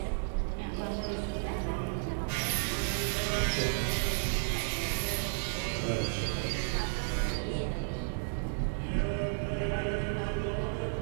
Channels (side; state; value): left; silent; digital silence